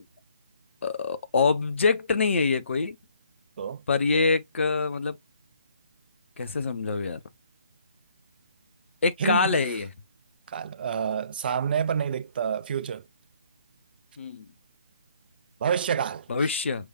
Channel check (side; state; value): both; inverted; correlation -0.64